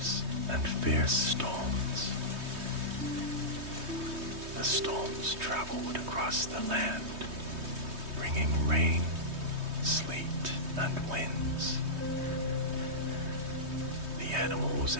and fierce storms. The storms traveled across the land, bringing rain, sleet, and winds. The animals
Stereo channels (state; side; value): late; left; 3.2 ms